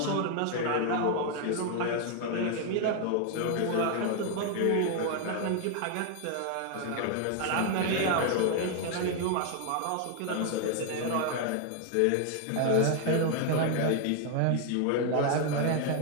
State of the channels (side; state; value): both; different; correlation 0.00